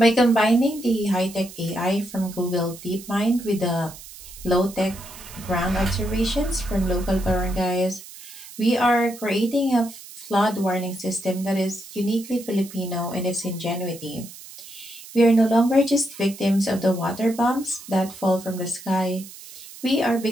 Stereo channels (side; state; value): right; noise; hiss, 16 dB below the sound